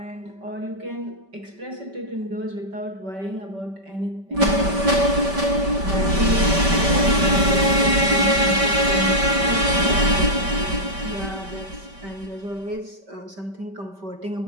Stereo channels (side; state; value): left; late; 5.2 ms